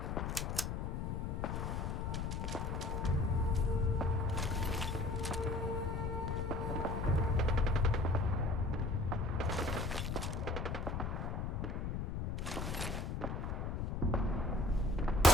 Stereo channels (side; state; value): left; noise; rumble, 2 dB below the sound